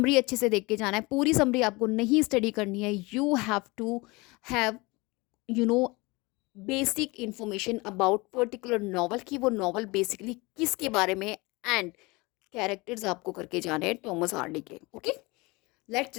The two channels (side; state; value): right; quieter; 24.5 dB